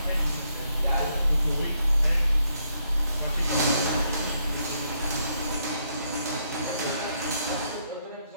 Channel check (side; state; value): both; inverted; correlation -0.76